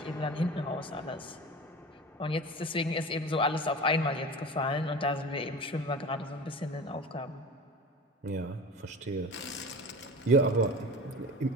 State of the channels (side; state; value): both; normal; correlation 0.34